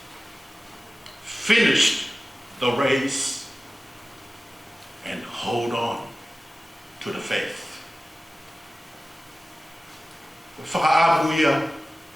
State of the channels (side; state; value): both; normal; correlation 0.96